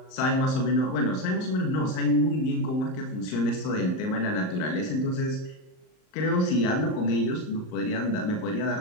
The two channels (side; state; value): right; late; 38 ms